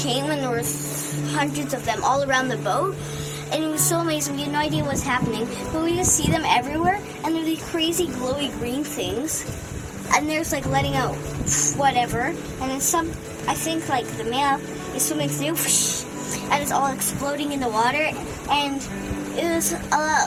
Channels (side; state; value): both; identical; correlation 1.00